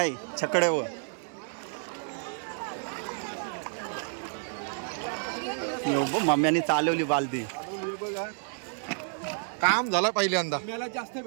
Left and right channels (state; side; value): silent; left; 58 dB below the other